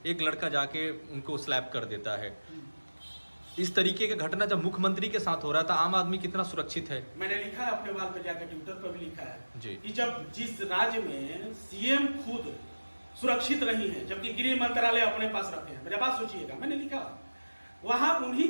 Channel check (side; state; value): both; inverted; correlation -1.00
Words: एक लड़का जाके उनको स्लैप कर देता है। इस तरीके का घटना जब मुख्यमंत्री के साथ हो रहा था, आम आदमी कितना सुरक्षित है? मैंने लिखा है अपने वाल पे जाकर, ट्विटर पर भी लिखा है जी कि जब जिस राज्य में सीएम खुद सुरक्षित नहीं है जबकि गृह मंत्रालय अपने पास रखे हैं, मेरे बात सोचिएगा, मैंने लिखा वहां उन्हीं